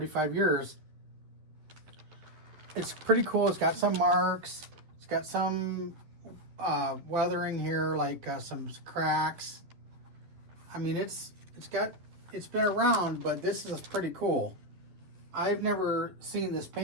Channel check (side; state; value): left; late; 11 ms